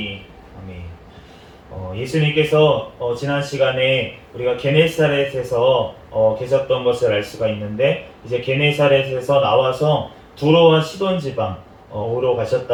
아멘. 예수님께서 지난 시간에 우리가 게네사렛에서 계셨던 것을 알 수가 있는데 이제 게네사렛에서 나와서 두로와 시돈 지방으로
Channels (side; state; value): both; identical; correlation 1.00